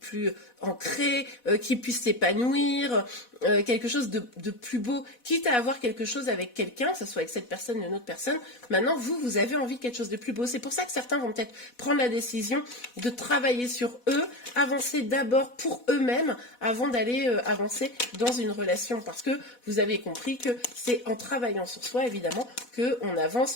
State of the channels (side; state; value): right; late; 4.1 ms